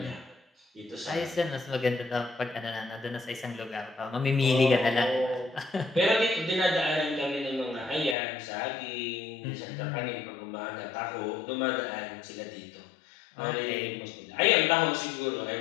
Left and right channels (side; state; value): right; drops out; at 8.2 s